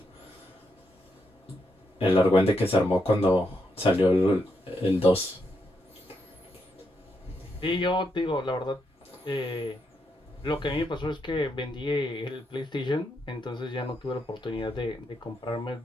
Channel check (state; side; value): normal; both; correlation 0.81